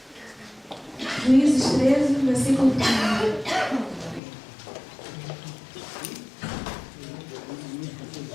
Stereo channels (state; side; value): drops out; right; at 4.2 s